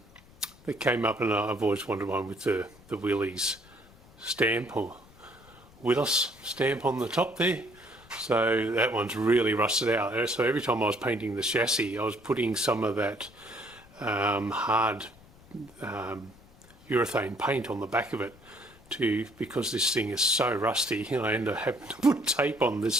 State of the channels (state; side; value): noise; left; rumble, 25 dB below the sound